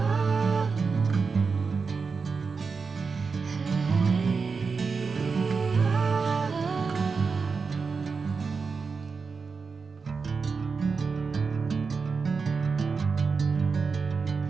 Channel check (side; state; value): left; quieter; 4.9 dB